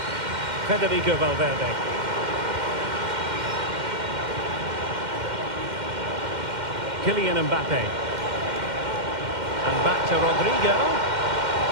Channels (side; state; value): left; late; 2.1 ms